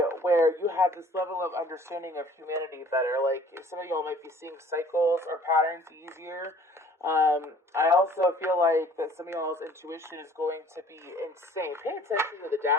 where you have this level of understanding of humanity better. Like some of y'all might be seeing cycles or patterns easier. I also feel like that some of y'all's intuition is going to be insane. Pay attention to the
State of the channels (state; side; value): normal; both; correlation 0.53